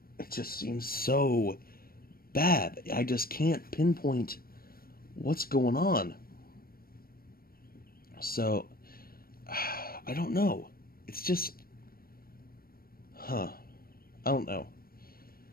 seems so bad. I just can't pinpoint what's going on. So I don't know. It's just I don't know.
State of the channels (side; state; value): right; late; 0.43 ms